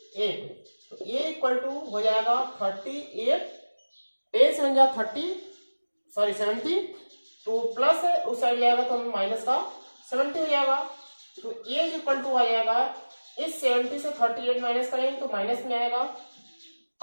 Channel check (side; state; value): both; inverted; correlation -1.00